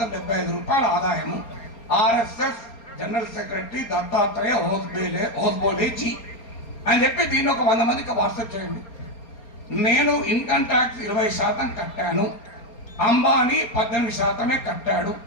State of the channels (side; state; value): right; late; 4.3 ms